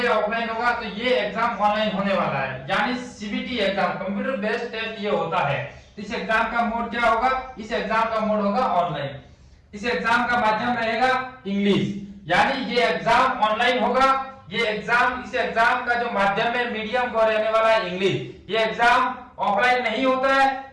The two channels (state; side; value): identical; both; correlation 1.00